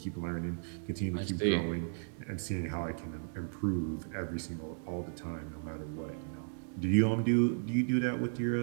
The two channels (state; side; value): silent; left; digital silence